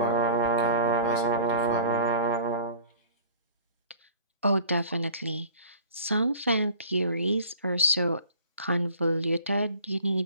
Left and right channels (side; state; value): both; inverted; correlation -0.46